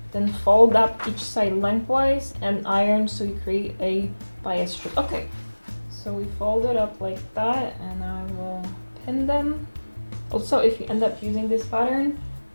then fold up each side lengthwise and iron so you create a bias strip. Okay, so we fold it up like that, and I will pin them. Also, if you end up using this pattern,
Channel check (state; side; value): inverted; both; correlation -1.00